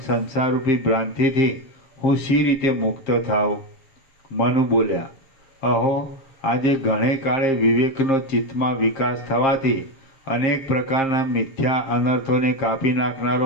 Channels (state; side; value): late; right; 7.5 ms